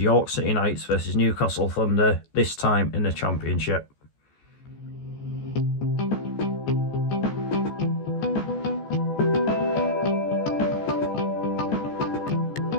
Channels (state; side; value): late; right; 14 ms